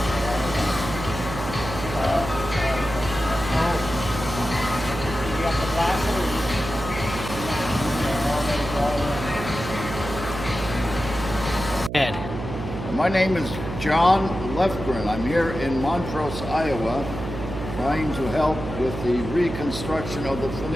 My name is John Lefgren. I'm here in Montrose, Iowa, trying to help with the reconstruction of the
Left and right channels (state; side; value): noise; right; hum, 7 dB below the sound